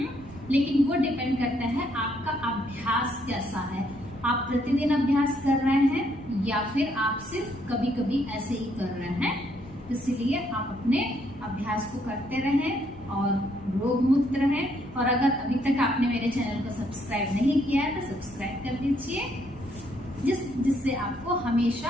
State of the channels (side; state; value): both; normal; correlation 0.71